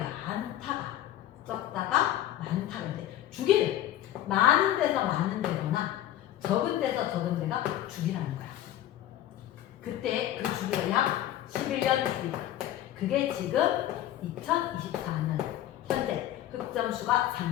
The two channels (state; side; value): quieter; right; 12.7 dB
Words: 적다가 많다가 돼. 주기를 많은 데서 많은 데거나 적은 데서 적은 데가 주기라는 거야. 그때 그 주기가 약 11년 주기다. 그게 지금 2024년 현재 흑점 수가